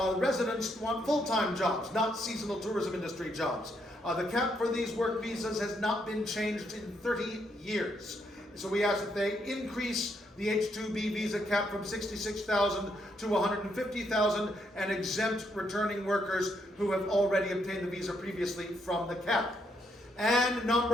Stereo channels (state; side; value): normal; both; correlation 0.76